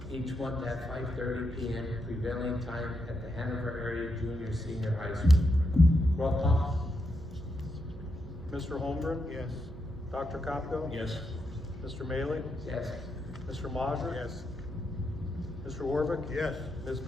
each month at 5:30 p.m. prevailing time at the Hanover Area Junior Senior High School. Roll call. Mr. Holmgren? Yes. Dr. Kopko? Yes. Mr. Maley? Yes. Mr. Mazur? Yes. Mr. Warvick? Yes. Ms.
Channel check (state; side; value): noise; right; hum, 14 dB below the sound